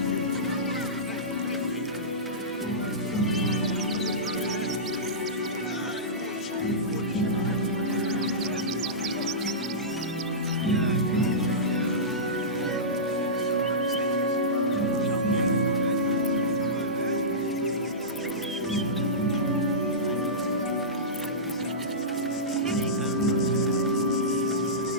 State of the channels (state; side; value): normal; both; correlation -0.18